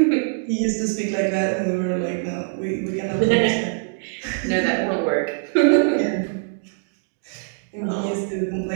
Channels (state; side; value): silent; left; 63 dB below the other